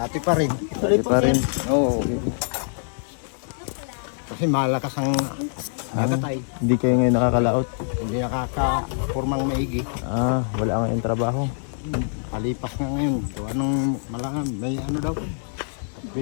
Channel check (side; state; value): right; silent; digital silence